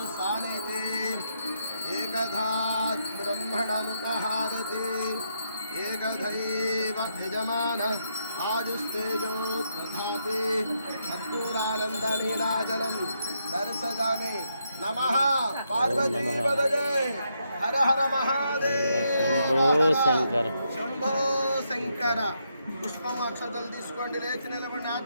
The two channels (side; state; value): both; inverted; correlation -0.79